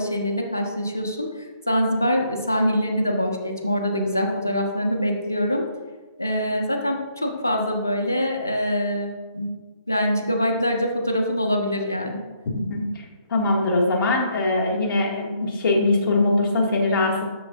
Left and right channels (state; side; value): inverted; both; correlation -0.72